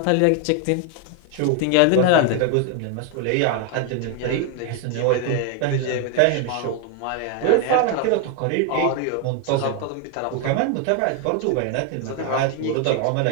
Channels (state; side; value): different; both; correlation 0.01